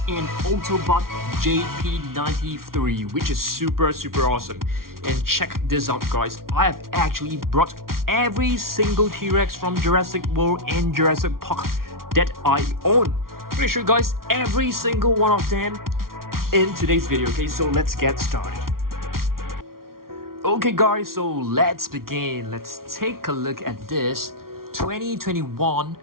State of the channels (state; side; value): late; left; 0.93 ms